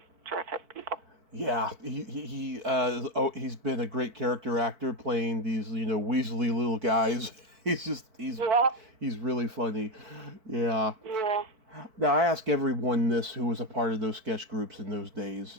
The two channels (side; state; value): left; late; 4.5 ms